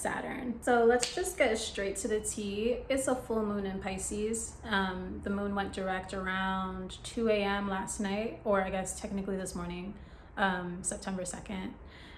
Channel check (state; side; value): identical; both; correlation 1.00